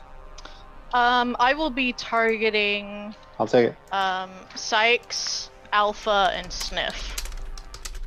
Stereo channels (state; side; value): identical; both; correlation 1.00